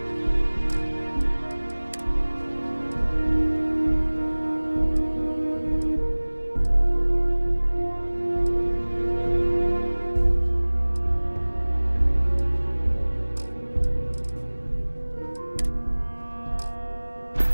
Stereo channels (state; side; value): inverted; both; correlation -1.00